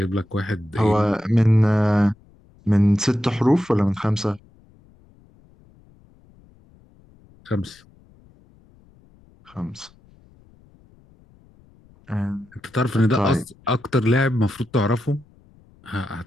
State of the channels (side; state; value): left; noise; rumble, 29 dB below the sound